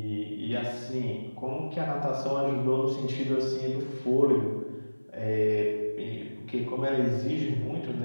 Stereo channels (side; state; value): both; inverted; correlation -1.00